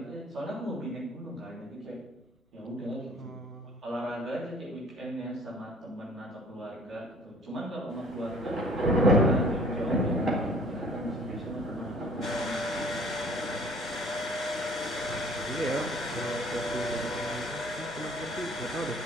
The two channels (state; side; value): normal; both; correlation 0.53